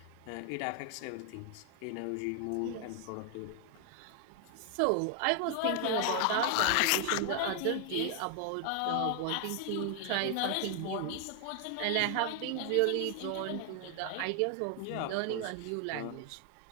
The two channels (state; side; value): different; both; correlation 0.00